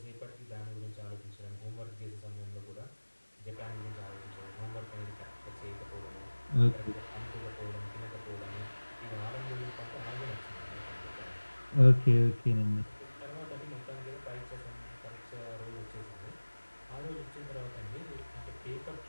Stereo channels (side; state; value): both; inverted; correlation -1.00